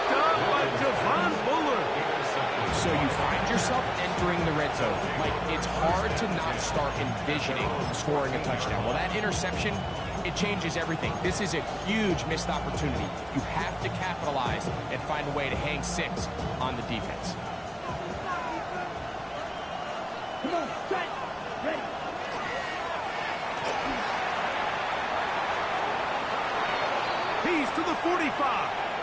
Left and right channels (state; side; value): identical; both; correlation 1.00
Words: up by Javon Bullard. So you find yourself entering the red zone. Like, it's hard to not start envisioning scoring a touchdown. Well, that interception, it changes everything. This is a huge missed opportunity. You have to capitalize and find a way to hang 6 on the defense. Come on, set, ready. He's to the 45.